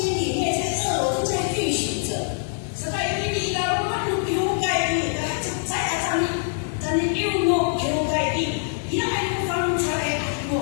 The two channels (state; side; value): silent; right; digital silence